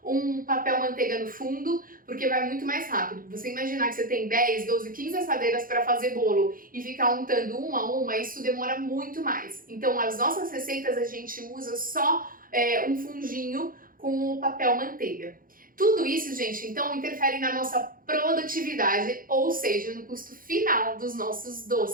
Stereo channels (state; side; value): late; left; 0.41 ms